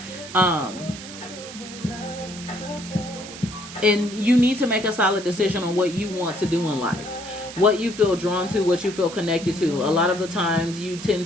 And you need to make a solid decision on what you want to do in life, what you feel drawn to, what you feel connected to. A lot of the times you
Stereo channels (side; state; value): right; noise; hiss, 13 dB below the sound